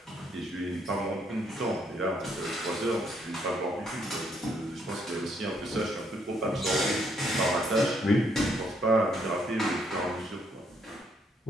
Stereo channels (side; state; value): both; normal; correlation 0.72